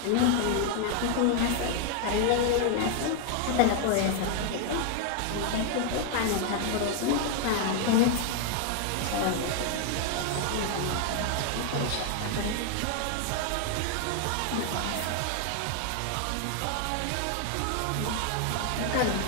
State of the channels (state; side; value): different; both; correlation 0.00